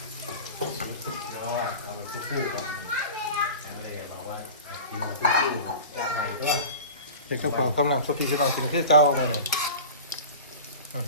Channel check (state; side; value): inverted; both; correlation -0.35